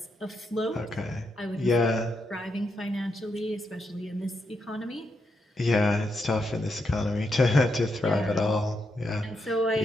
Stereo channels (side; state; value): both; normal; correlation 0.82